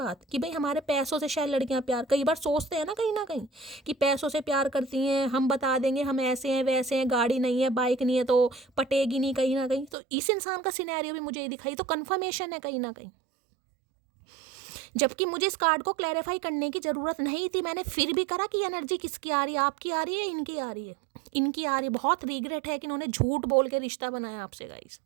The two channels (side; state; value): left; drops out; at 9.9 s